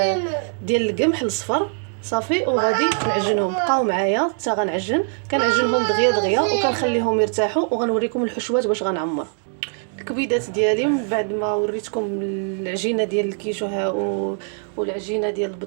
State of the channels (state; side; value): silent; left; 60 dB below the other